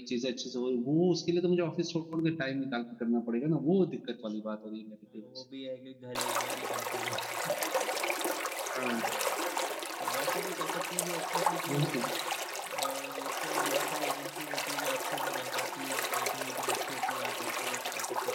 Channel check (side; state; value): both; identical; correlation 1.00